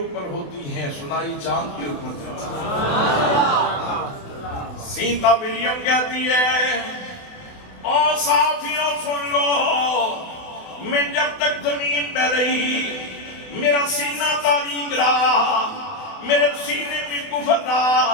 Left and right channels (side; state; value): right; late; 28 ms